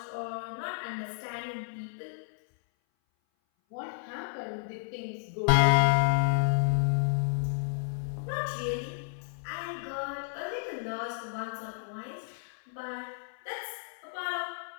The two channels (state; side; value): silent; right; 57 dB below the other